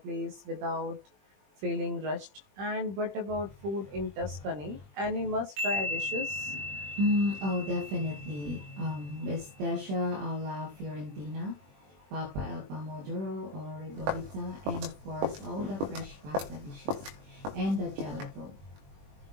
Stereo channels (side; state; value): left; late; 20 ms